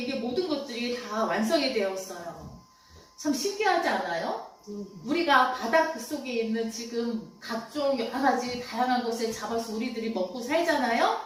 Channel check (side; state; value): both; identical; correlation 1.00